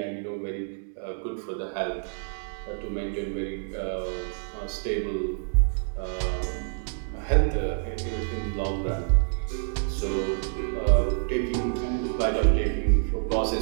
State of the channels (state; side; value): silent; left; digital silence